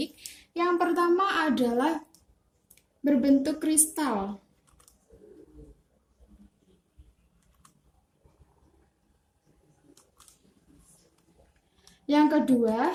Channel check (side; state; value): both; identical; correlation 1.00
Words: Yang pertama adalah berbentuk kristal. Yang kedua,